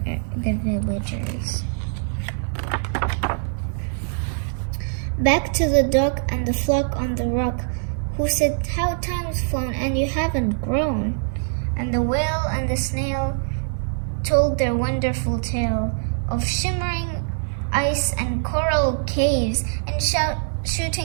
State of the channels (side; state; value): left; silent; digital silence